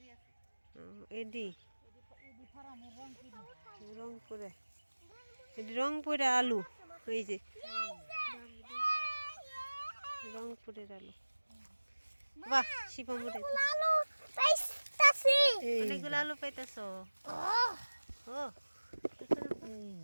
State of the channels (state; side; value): inverted; both; correlation -1.00